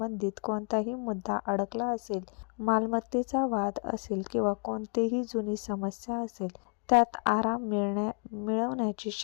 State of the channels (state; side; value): quieter; right; 39.8 dB